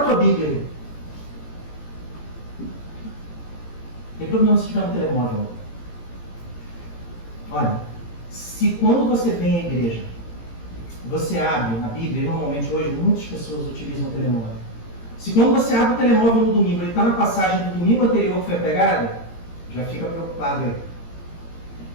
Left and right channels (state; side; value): late; right; 17 ms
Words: tua Bíblia aí? Tem problema se ficar no telemóvel. Olha, se quando você vem à igreja, você abre a Bíblia, normalmente hoje muitas pessoas utilizam o telemóvel. Se quando você abre o telemóvel no domingo, ele está na passagem do domingo anterior que foi pregada, já fica preocupado aí.